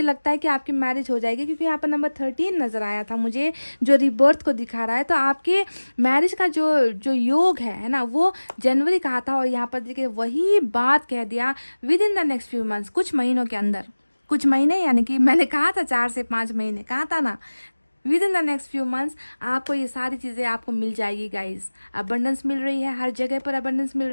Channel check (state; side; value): inverted; both; correlation -1.00